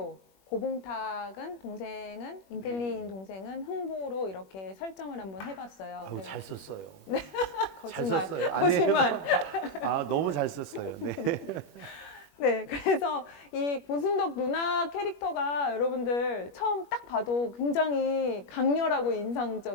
고봉탁은 동생은 인텔리인 동생은 흥부로 이렇게 설정을 한번 해봤어요. 아우, 그래서 잘 썼어요. 거짓말, 잘 썼어요. 아니, 거짓말. 아, 너무 잘 썼어요. 네. 네, 그래서 이 고순덕 누나 캐릭터가 여러분들 처음 딱 봐도 굉장히 강렬하고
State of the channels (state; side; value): late; right; 21 ms